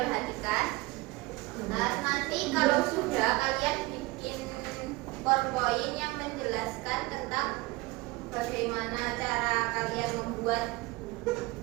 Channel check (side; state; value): left; quieter; 22.2 dB